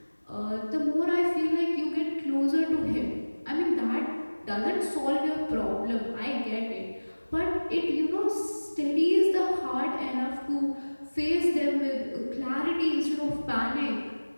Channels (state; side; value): inverted; both; correlation -1.00